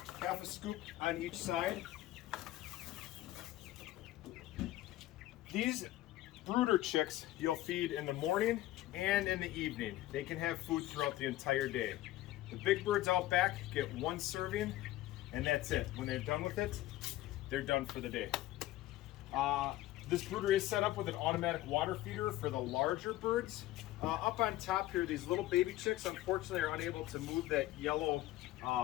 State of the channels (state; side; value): quieter; right; 15.5 dB